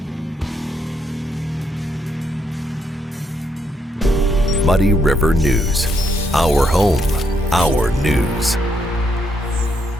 Muddy River News. Our home, our news.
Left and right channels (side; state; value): both; normal; correlation 0.76